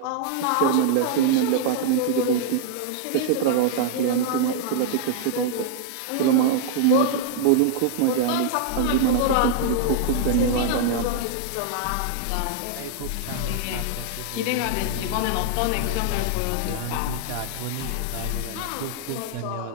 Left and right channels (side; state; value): both; different; correlation -0.01